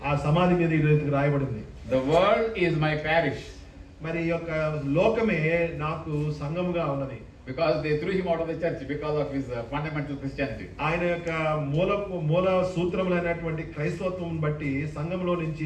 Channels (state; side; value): identical; both; correlation 1.00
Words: ఆ సమాధి మీద ఈ రీతిగా రాయబడింది, the world is my parish. మరి ఈ యొక్క లోకమే నాకు సంఘముగా ఉన్నది. Because they threw him out of the church because of his fundamental Christianity. ఆయన యొక్క మూల సూత్రములైనటువంటి క్రైస్తవత్వం బట్టి సంఘంలో నుంచి